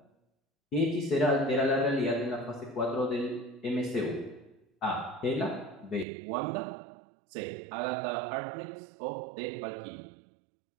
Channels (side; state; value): left; drops out; at 6.1 s